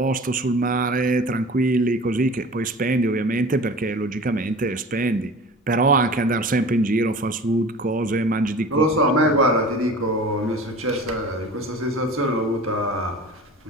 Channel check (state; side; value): normal; both; correlation 0.39